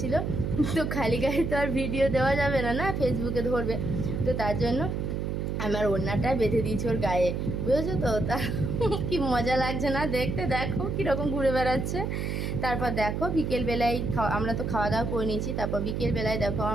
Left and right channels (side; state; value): right; noise; hum, 2 dB below the sound